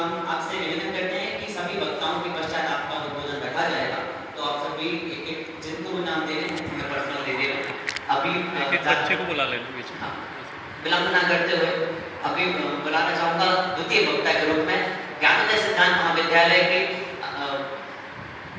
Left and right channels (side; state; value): both; identical; correlation 1.00